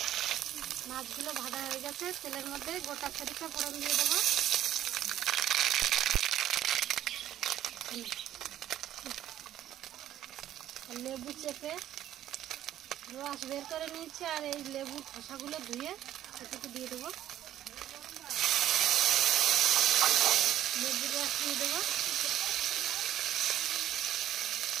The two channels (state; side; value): quieter; left; 12.2 dB